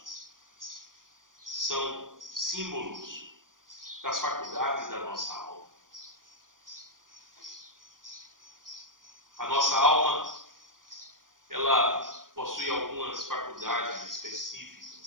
são símbolos das faculdades da nossa alma. A nossa alma, ela possui algumas faculdades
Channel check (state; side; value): late; left; 0.90 ms